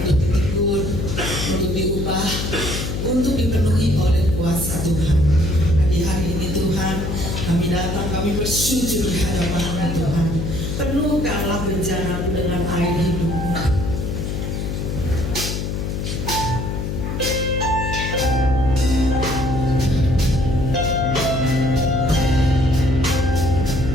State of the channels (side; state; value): left; noise; hum, 3 dB below the sound